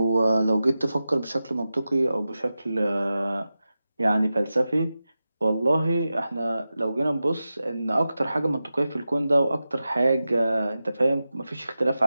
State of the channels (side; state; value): both; inverted; correlation -0.93